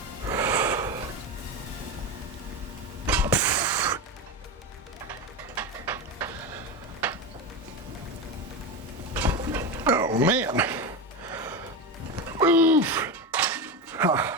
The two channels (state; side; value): normal; both; correlation 0.18